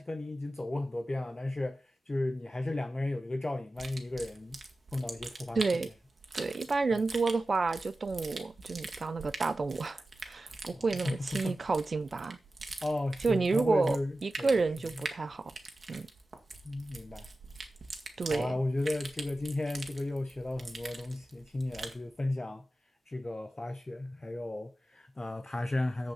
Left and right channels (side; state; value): both; normal; correlation 0.94